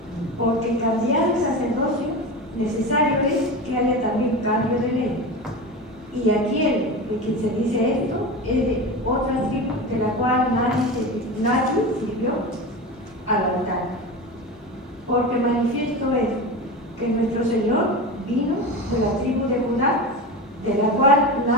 Porque cambiar el sacerdocio necesario es que haya también cambio de ley. Y aquel de quien se dice esto es de otra tribu de la cual nadie sirvió al altar. Porque manifiesto es que nuestro Señor vino de la tribu de Judá, de la cual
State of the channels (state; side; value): normal; both; correlation 0.25